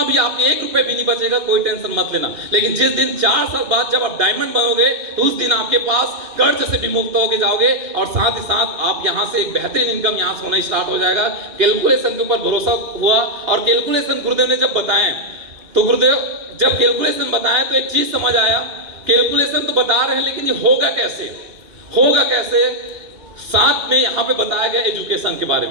भी, आपके 1 रुपए भी नहीं बचेगा, कोई टेंशन मत लेना। लेकिन जिस दिन 4 साल बाद जब आप डायमंड बनोगे, तो उस दिन आपके पास कर्ज से भी मुक्त होके जाओगे, और साथ ही साथ आप यहाँ से एक बेहतरीन इनकम यहाँ से होना स्टार्ट हो जाएगा। कैलकुलेशन के ऊपर भरोसा हुआ, और कैलकुलेशन गुरुदेव ने जब बताए, तो गुरुदेव जब कैलकुलेशन बताया तो एक चीज समझ आया, कैलकुलेशन तो बता रहे हैं लेकिन ये होगा कैसे, होगा कैसे। साथ में यहाँ पे बताया गया एजुकेशन के बारे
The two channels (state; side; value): late; left; 2.8 ms